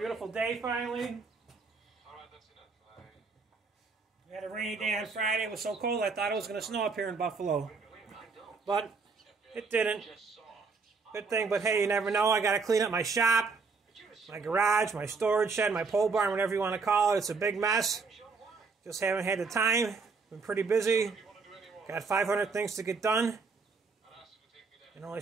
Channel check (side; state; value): left; quieter; 4.6 dB